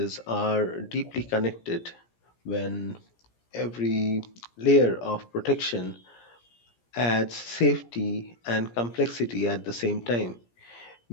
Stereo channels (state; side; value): late; right; 17 ms